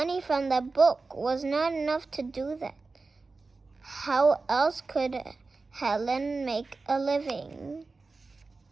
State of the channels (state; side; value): quieter; left; 3.9 dB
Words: from the book was not enough to do that. How else could Helen make a living?